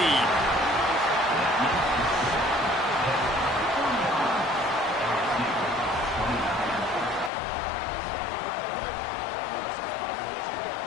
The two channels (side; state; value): right; drops out; at 7.3 s